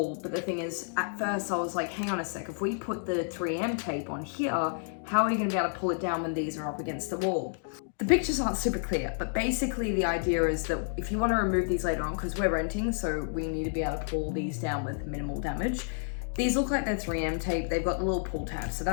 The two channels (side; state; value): right; silent; digital silence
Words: but the thing is, at first I was like, hang on a sec, if we put the 3M tape on here, how are you going to be able to pull it down when these are up against the wall? The pictures aren't super clear, but basically the idea is that if you want to remove these later on, because we're renting, so we need to be able to pull these down with minimal damage. These look like they're 3M tape, they've got the little pull tab, so